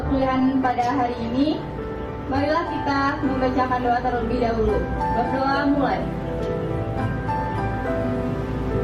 pada hari ini, marilah kita membacakan doa terlebih dahulu. Berdoa mulai.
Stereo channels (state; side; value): identical; both; correlation 1.00